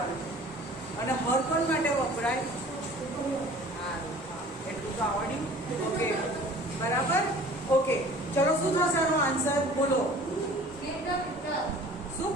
અને હર કોણ માટે વપરાય? હા, એટલું તો આવડ્યું. ઓકે, બરાબર. ઓકે, ચલો શું થશે આનો આન્સર? બોલો. શું?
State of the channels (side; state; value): both; normal; correlation 0.47